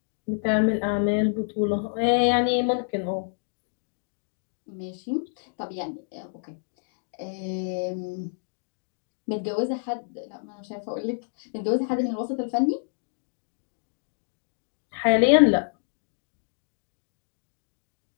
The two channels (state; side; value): silent; right; digital silence